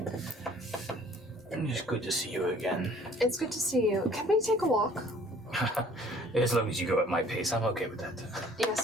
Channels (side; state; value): both; normal; correlation 0.55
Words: It's good to see you again. It's good to see you. Can we take a walk? As long as you go at my pace, I'm okay with that.